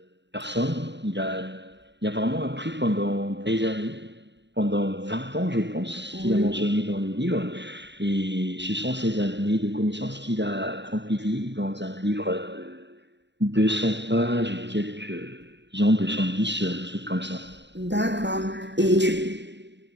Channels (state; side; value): late; left; 0.52 ms